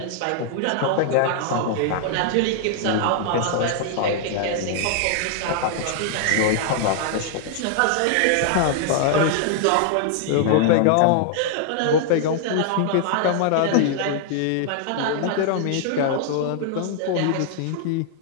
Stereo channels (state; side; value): different; both; correlation 0.00